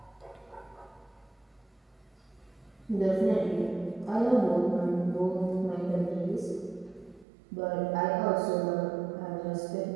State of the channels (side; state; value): left; drops out; at 7.2 s